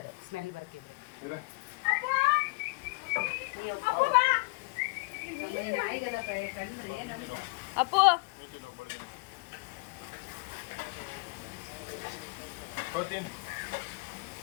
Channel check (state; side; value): quieter; right; 30.5 dB